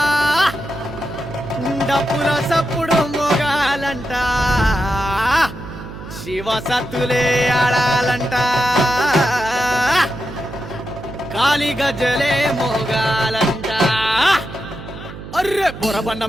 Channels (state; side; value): noise; right; hum, 13 dB below the sound